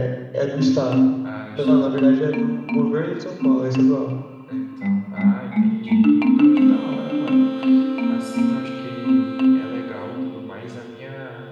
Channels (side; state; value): both; identical; correlation 1.00